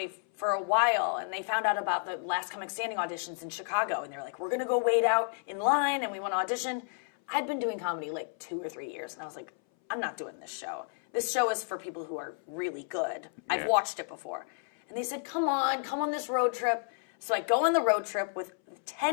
for a while, and they found out about the Last Comic Standing auditions in Chicago, and they were like, we're going to go wait out in line, and we want to audition. I'd been doing comedy like 2 or 3 years, and I was like, I'm not doing this show. This show is for people who are really good. I've watched it before. And they said, come on this road trip. So I go on the road trip with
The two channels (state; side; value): silent; right; 57 dB below the other